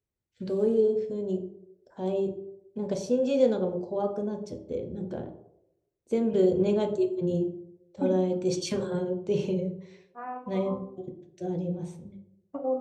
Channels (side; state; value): both; identical; correlation 1.00